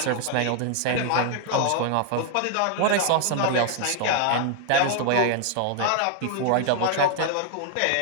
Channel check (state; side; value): different; both; correlation 0.00